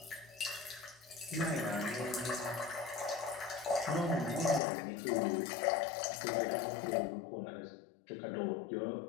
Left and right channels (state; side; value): drops out; right; at 4.6 s